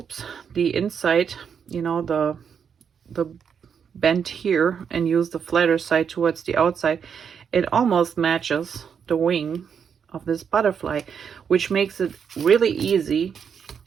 the inside, you know, the bend here, and use the flatter side towards the outside, it almost matches the wing of this butterfly, which makes it really easy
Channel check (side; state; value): left; quieter; 7.2 dB